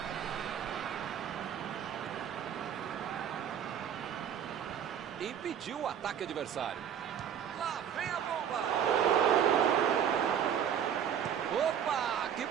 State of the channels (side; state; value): left; quieter; 8.9 dB